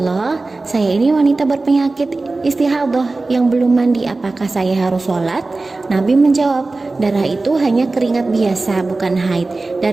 saya ini wanita berpenyakit istihadah yang belum mandi, apakah saya harus sholat?" Nabi menjawab, darah itu hanya keringat biasa, bukan haid.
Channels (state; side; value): quieter; left; 3.4 dB